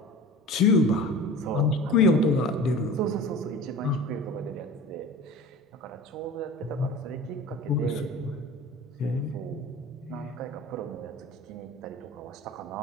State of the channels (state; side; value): normal; both; correlation 0.37